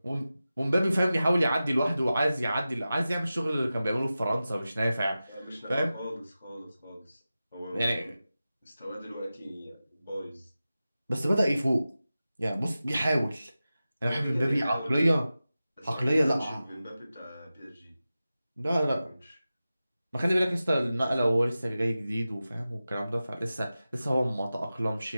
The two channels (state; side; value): inverted; both; correlation -0.94